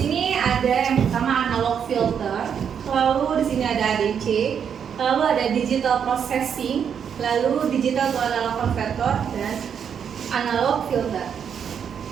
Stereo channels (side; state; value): left; quieter; 7.7 dB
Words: ada yang pertama analog filter, lalu di sini ada ADC, lalu ada digital processing, lalu digital to analog converter, dan analog filter.